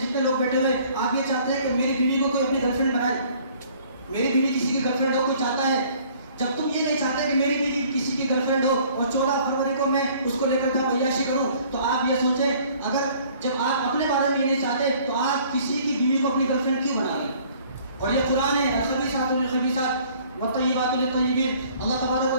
لوگ بیٹھے ہوئے آپ یہ چاہتے ہیں کہ میری بیوی کو کوئی اپنی گرل فرینڈ بنائے، میری بیوی کسی کی گرل فرینڈ ہو، کوئی چاہتا ہے؟ جب تم یہ نہیں چاہتے کہ میری بیوی کسی کی گرل فرینڈ ہو اور 14 فروری کو میں اس کو لے کر جاؤں عیاشی کروں، تو آپ یہ سوچیں اگر جب آپ اپنے بارے میں یہ نہیں چاہتے تو آپ کسی کی بیوی کو اپنی گرل فرینڈ کیوں بنا لیں؟ اور یہ قرآن ہے الخبیثات للخبیثات والطیبات للطیبین. اللہ تبارک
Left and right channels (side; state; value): both; inverted; correlation -0.56